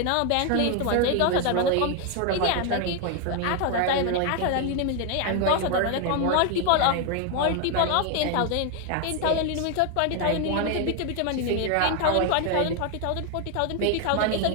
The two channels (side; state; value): both; different; correlation 0.01